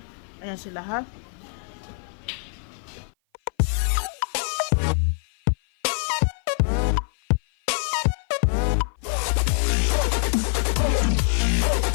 Ayan sila ha.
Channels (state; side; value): silent; right; 56 dB below the other